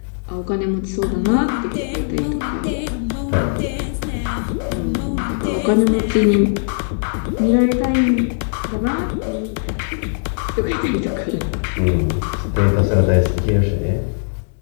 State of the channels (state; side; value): silent; right; digital silence